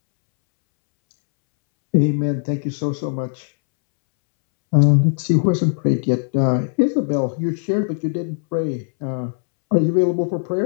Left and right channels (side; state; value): right; silent; 66 dB below the other